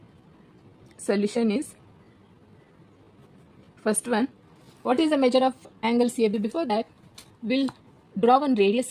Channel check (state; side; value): identical; both; correlation 1.00